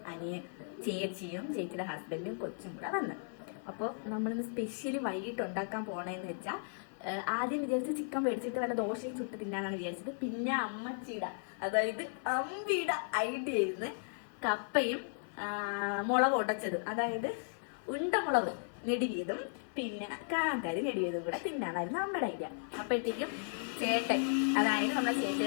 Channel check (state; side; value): silent; right; 54 dB below the other